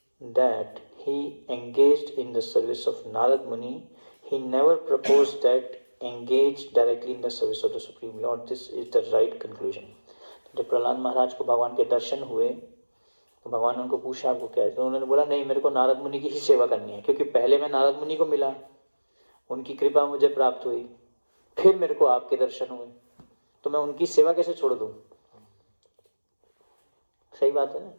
that he engaged in the service of Narad Muni. He never proposed that engage directly in the service of the Supreme Lord. This is the right conclusion. जब प्रहलाद महाराज को भगवान के दर्शन हुए तो भगवान ने उनको पूछा आपको क्या है, तो उन्होंने बोला नहीं, मेरे को नारद मुनि की ही सेवा करनी है, क्योंकि पहले मैं नारद मुनि को मिला, उनकी कृपा मुझे प्राप्त हुई, फिर मेरे को आपके दर्शन हुए, तो मैं उनकी सेवा कैसे छोड़ दूं. सही बात है ना,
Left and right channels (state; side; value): inverted; both; correlation -1.00